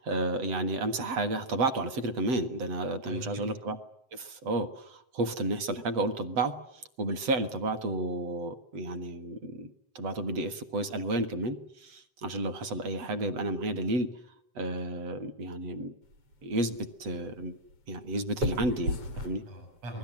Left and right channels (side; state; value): left; late; 7.8 ms